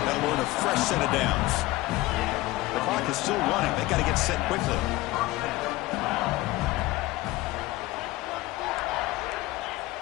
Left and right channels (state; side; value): quieter; right; 18.9 dB